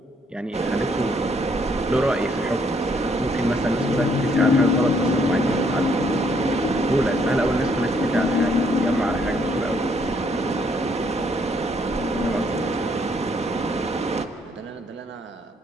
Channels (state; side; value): normal; both; correlation 0.69